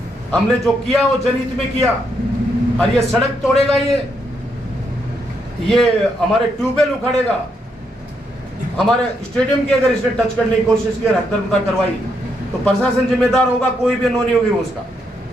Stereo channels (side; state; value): both; normal; correlation 0.78